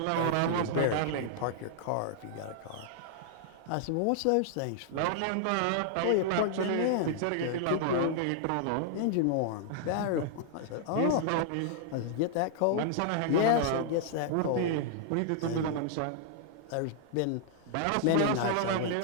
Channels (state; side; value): different; both; correlation -0.01